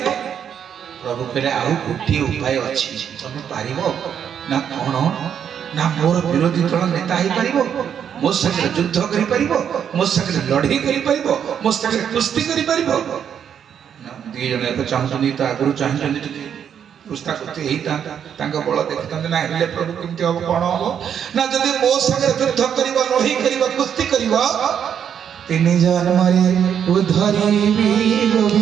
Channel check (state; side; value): quieter; left; 8.4 dB